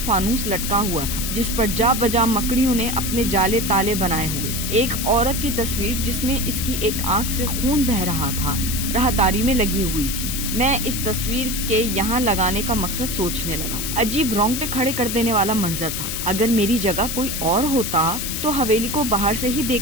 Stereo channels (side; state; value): left; noise; hiss, 4 dB below the sound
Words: लटका हुआ था जिस पर जा बजा मकड़ियों ने अपने जाले ताले बनाए हुए। एक औरत की तस्वीर जिसमें इसकी एक आंख से खून बह रहा था राहदारी में लगी हुई थी। मैं इस तस्वीर के यहाँ लगाने का मकसद सोचने लगा। अजीब रोंगटे खड़े कर देने वाला मंजर था। अगर मेरी जगह कोई और होता तो हवेली को बाहर से ही